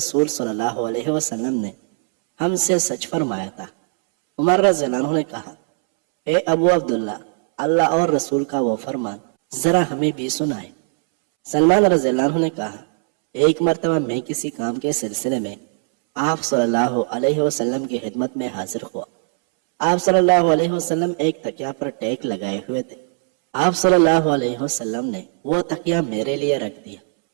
صلی اللہ علیہ وسلم نے ہم سے سچ فرمایا تھا۔ عمر رضی اللہ عنہ نے کہا، اے ابو عبداللہ، اللہ اور رسول کا وہ فرمان ذرا ہمیں بھی سنائے۔ سلمان رضی اللہ عنہ نے کہا، ایک مرتبہ میں کسی کام کے سلسلے میں آپ صلی اللہ علیہ وسلم کی خدمت میں حاضر ہوا۔ آپ صلی اللہ علیہ وسلم ایک تکیا پر ٹیک لگائے ہوئے تھے۔ آپ صلی اللہ علیہ وسلم نے وہ تکیا میرے لیے رکھ دیا۔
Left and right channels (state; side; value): silent; left; 66 dB below the other